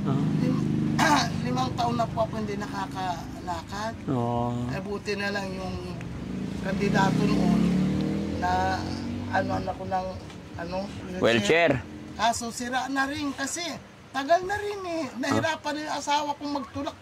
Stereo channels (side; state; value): both; identical; correlation 1.00